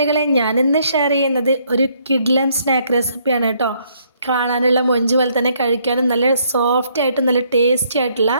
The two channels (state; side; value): inverted; both; correlation -0.68